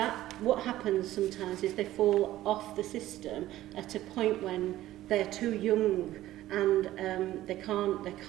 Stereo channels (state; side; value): quieter; left; 14.7 dB